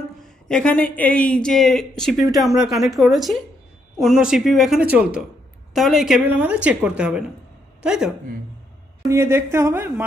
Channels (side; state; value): both; normal; correlation 0.75